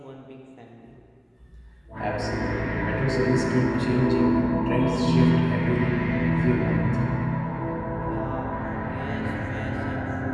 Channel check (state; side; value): identical; both; correlation 1.00